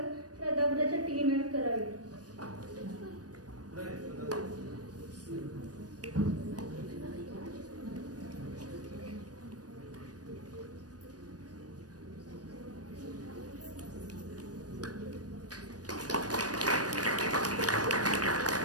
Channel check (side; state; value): left; late; 0.68 ms